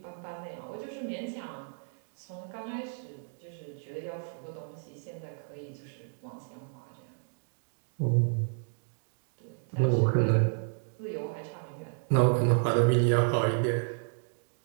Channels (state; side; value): silent; left; 57 dB below the other